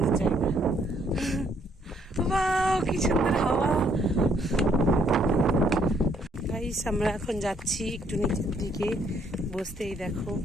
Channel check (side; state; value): both; normal; correlation 0.68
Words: জায়গা। বাহ, কি সুন্দর হাওয়া। গাইস, আমরা এখন যাচ্ছি একটু নিচের দিকে বসতে। এই দেখো